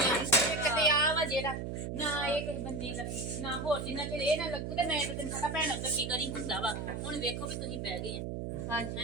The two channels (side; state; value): right; noise; hum, 4 dB below the sound